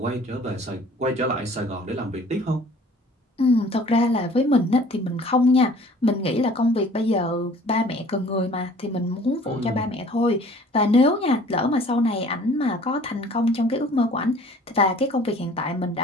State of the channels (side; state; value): both; normal; correlation 0.51